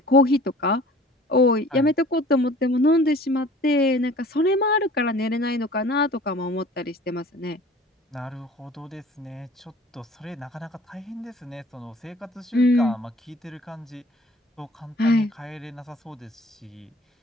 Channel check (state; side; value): normal; both; correlation 0.48